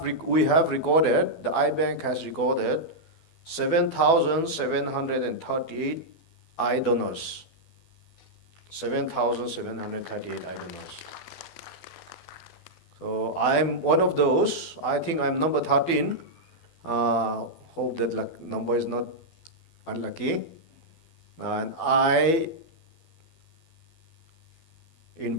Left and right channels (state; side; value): late; right; 12 ms